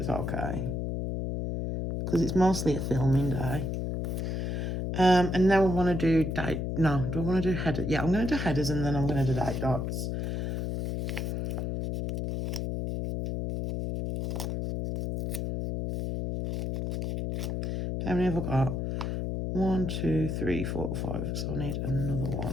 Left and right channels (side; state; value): left; noise; hum, 2 dB below the sound